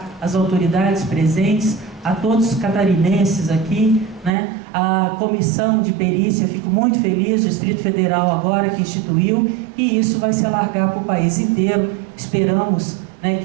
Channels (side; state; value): left; drops out; at 4.3 s